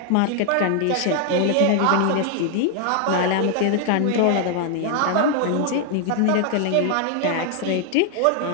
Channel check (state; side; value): different; both; correlation 0.00